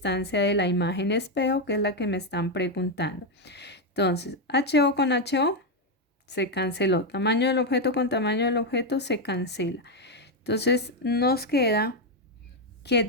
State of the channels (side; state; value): both; normal; correlation 0.04